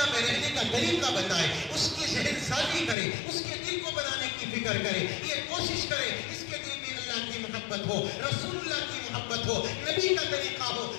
میں رہنے کا طریقہ بتائے، اس کی ذہن سازی کرے، اس کے دل کو بنانے کی فکر کرے، یہ کوشش کرے اس کے دل میں اللہ کی محبت ہو، رسول اللہ کی محبت ہو، نبی کا طریقہ ہو۔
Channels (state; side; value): drops out; right; at 3.0 s